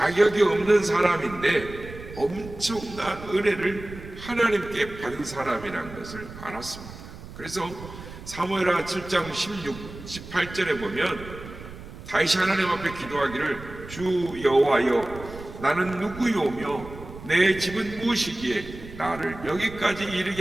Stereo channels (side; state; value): right; noise; rumble, 14 dB below the sound